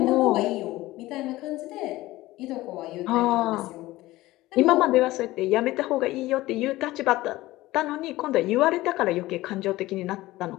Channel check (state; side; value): quieter; right; 17.8 dB